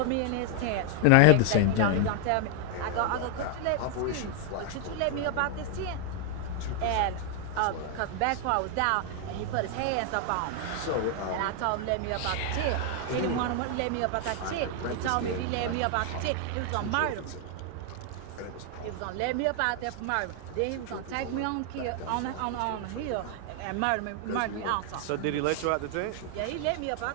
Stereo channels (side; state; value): both; different; correlation 0.00